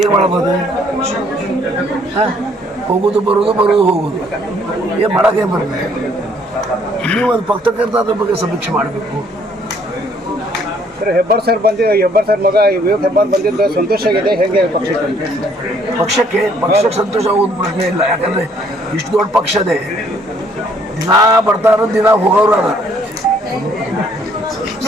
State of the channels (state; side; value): normal; both; correlation 0.64